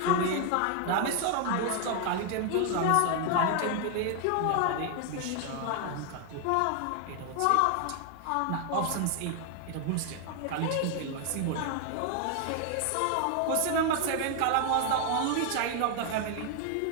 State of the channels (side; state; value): both; different; correlation 0.00